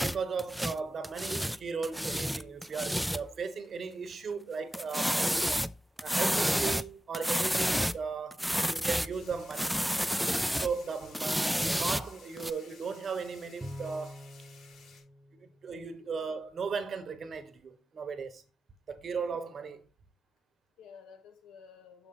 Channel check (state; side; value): normal; both; correlation 0.93